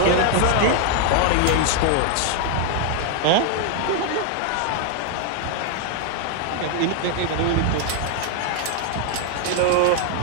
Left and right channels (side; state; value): both; different; correlation 0.00